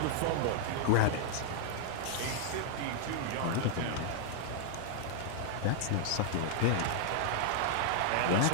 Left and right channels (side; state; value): both; different; correlation -0.01